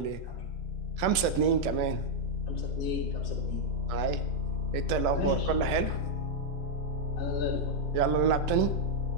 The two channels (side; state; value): left; late; 2.8 ms